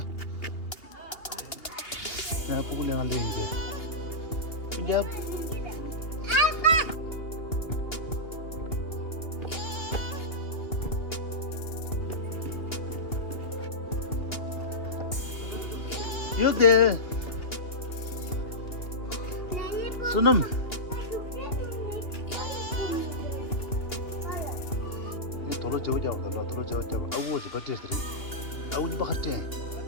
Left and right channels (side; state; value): right; late; 2.8 ms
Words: 내가 보고 내가 이제. 이제 여기 수능 도로 저자고 도로 저자고 아우 저 버티스리 아우 니 바하테